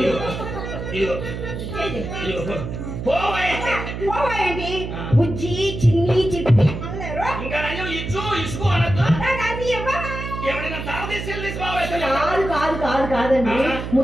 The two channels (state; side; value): noise; right; hum, 6 dB below the sound